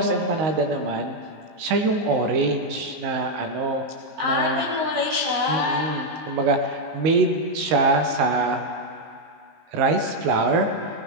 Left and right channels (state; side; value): late; left; 19 ms